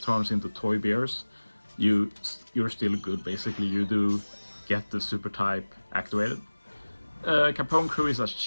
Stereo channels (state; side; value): inverted; both; correlation -1.00